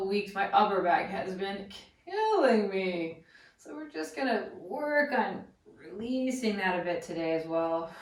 weeks, my upper back has been killing me. So we're just gonna work on releasing that a bit today as well.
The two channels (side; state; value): both; identical; correlation 1.00